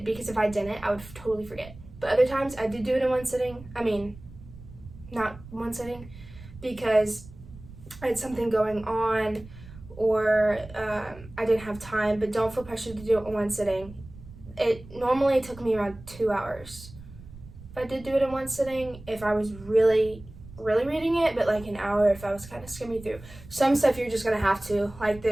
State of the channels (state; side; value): noise; right; rumble, 18 dB below the sound